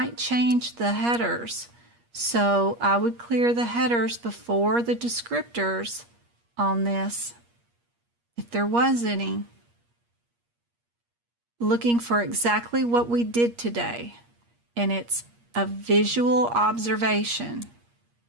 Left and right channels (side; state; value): left; late; 8.5 ms